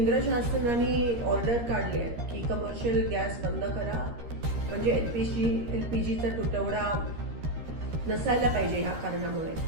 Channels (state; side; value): late; left; 13 ms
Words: शासनाने ऑर्डर काढली आहे की कमर्शियल गॅस बंद करा, म्हणजे LPGचा तुटवडा नसायला पाहिजे ह्या कारणामुळे।